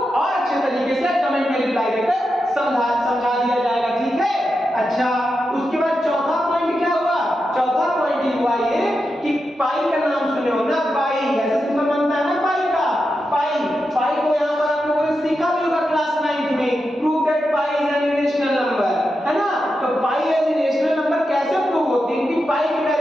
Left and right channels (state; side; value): normal; both; correlation 0.88